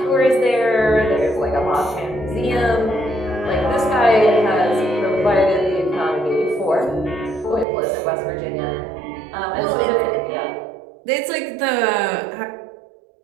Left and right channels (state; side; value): drops out; left; at 7.7 s